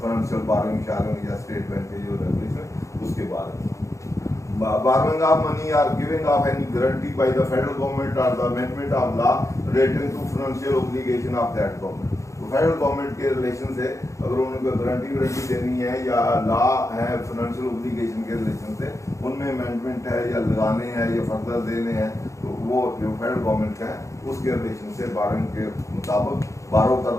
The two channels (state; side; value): late; right; 0.15 ms